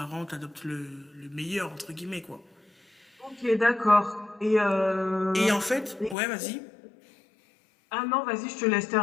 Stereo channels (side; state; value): right; drops out; at 6.2 s